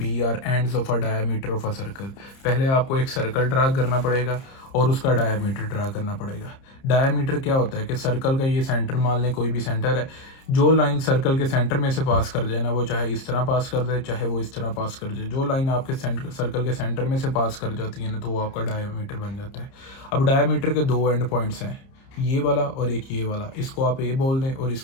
are ends of a diameter of a circle. पहले आपको एक सर्कल ड्रा करना पड़ेगा और उसका डायमीटर ड्रा करना पड़ेगा। डायमीटर क्या होता है कि सर्कल का ये सेंटर, मान लें कोई भी सेंटर है, जो लाइन सर्कल के सेंटर में से पास कर जाए ना, वो चाहे इस तरह पास कर दे चाहे वो इस तरह पास कर जाए, जो लाइन आपके सर्कल के सेंटर में से पास कर जाती है ना तो वो आपका डायमीटर बन जाता है। अब डायमीटर के 2 एंड पॉइंट्स हैं, ये वाला और एक ये वाला। इसको आप ए बोल दें और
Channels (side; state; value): right; late; 30 ms